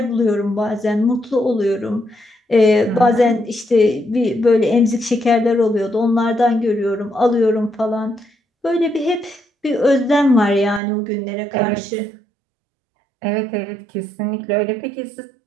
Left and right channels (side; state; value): left; drops out; at 10.8 s